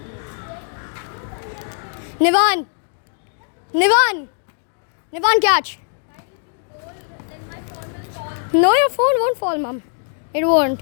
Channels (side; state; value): right; silent; digital silence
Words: Nivan, catch. No, your phone won't fall, mom. It won't.